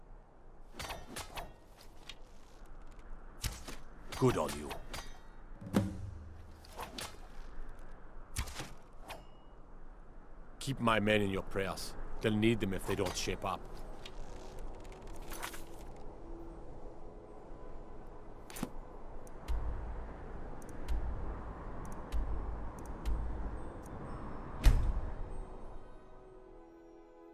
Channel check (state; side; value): identical; both; correlation 1.00